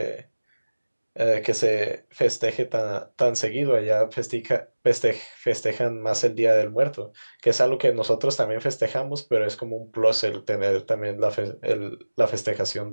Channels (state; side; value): inverted; both; correlation -1.00